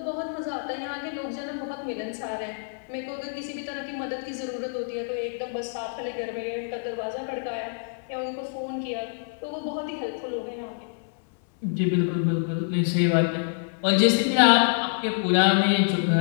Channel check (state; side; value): silent; right; 60 dB below the other